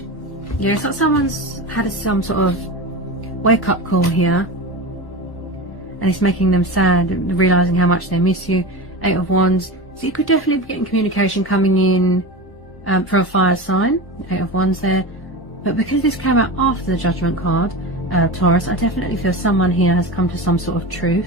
Yeah, it's like someone's had some sort of wake-up call here. And it's making them sad, realising how much they miss you. 8 of Wands. So you could definitely be getting communication coming in for a fire sign. 8 of Wands there. But because this came out after the Judgment card, Taurus, I definitely feel someone here has come to some sort of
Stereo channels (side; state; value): right; late; 1.1 ms